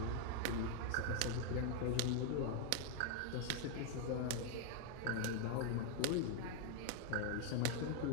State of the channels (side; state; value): both; different; correlation 0.01